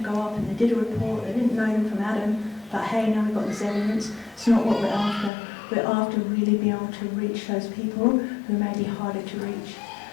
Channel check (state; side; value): drops out; right; at 5.3 s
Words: up and they did a report, they didn't know them from Adam, but hey, now we've got this evidence. It's not what we're after. We're after really being able to reach those people who may be harder to reach.